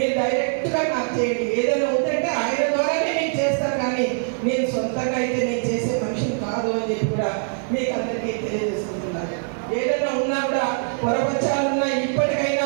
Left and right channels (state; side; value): silent; left; digital silence